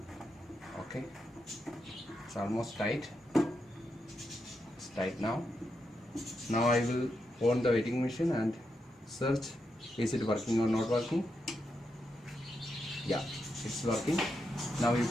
Okay, it's almost tight. It's tight now. Now I will on the wetting machine and search, is it working or not working. Yeah, it's working. Now you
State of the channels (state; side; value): normal; both; correlation 0.84